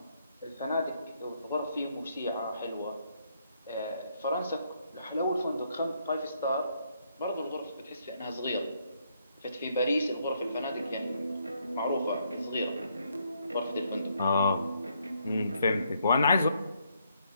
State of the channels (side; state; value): both; inverted; correlation -0.73